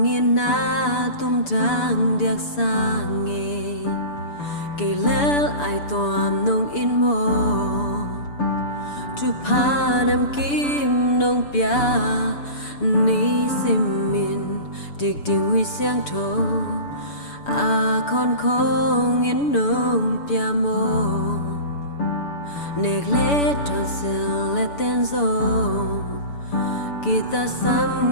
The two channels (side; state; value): right; late; 6.9 ms